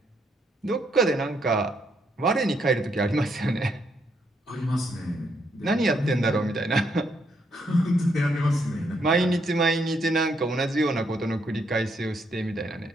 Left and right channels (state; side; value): normal; both; correlation 0.75